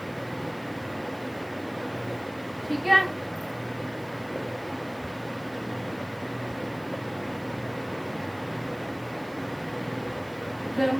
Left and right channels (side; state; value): right; noise; hiss, 24 dB below the sound